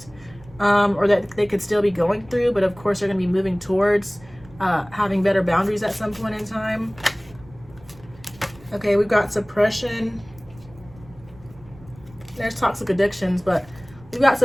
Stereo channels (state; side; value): noise; right; rumble, 23 dB below the sound